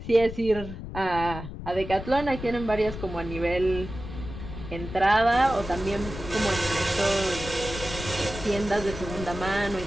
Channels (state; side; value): noise; left; rumble, 10 dB below the sound